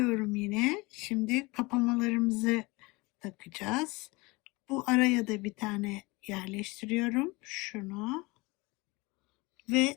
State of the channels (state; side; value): quieter; right; 24.2 dB